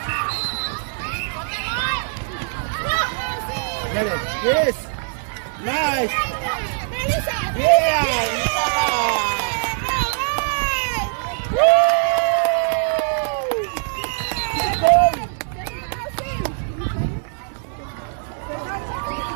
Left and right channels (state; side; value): silent; left; 64 dB below the other